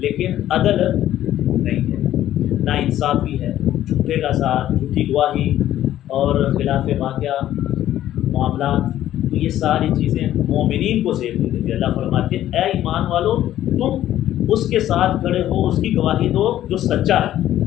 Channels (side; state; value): right; quieter; 12.7 dB